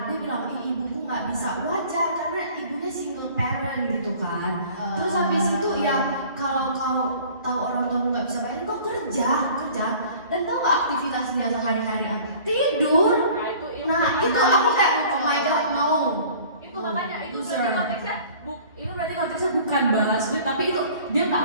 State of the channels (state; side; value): inverted; both; correlation -0.49